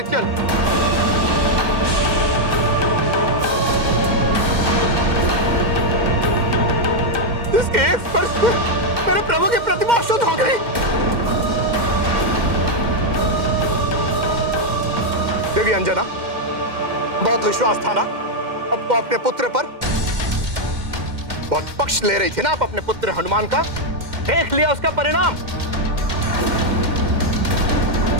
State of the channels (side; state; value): left; late; 2.1 ms